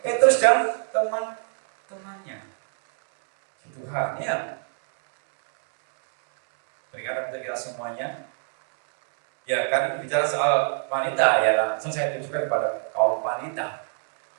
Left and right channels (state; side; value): silent; left; digital silence